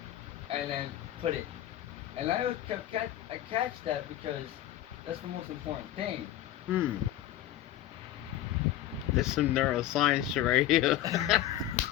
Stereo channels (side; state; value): right; quieter; 13.0 dB